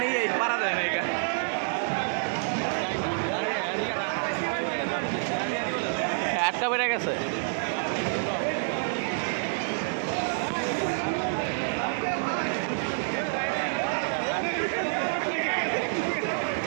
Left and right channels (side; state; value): left; silent; digital silence